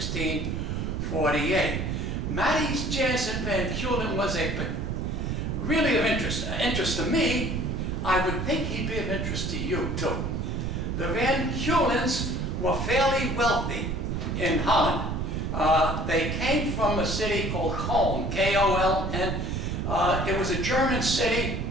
Matties Jansen van Keulen was really of interest to me. I would think he'd be of interest to you too. The Van Keulens were fairly wealthy in Holland. They came from a city called Keulen, K-O-L-N. It was a German city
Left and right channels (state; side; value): noise; right; rumble, 2 dB below the sound